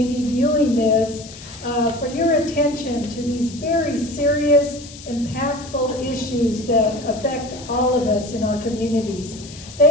be viewing this for your attention to these very serious, impactful issues that affect all of us in our communities.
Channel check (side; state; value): left; noise; hiss, 17 dB below the sound